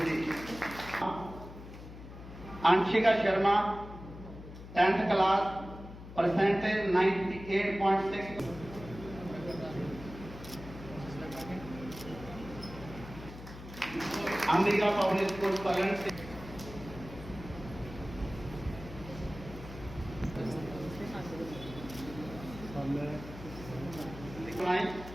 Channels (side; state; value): left; noise; hum, 14 dB below the sound